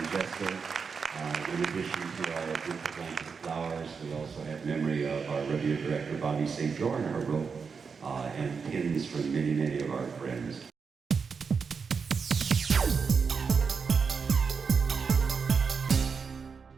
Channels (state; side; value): quieter; left; 5.6 dB